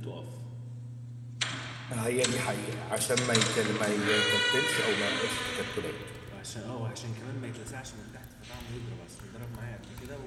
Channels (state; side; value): identical; both; correlation 1.00